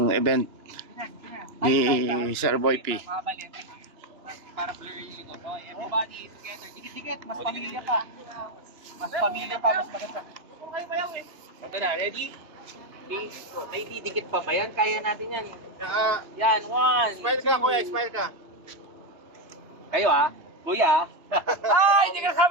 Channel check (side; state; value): left; late; 2.9 ms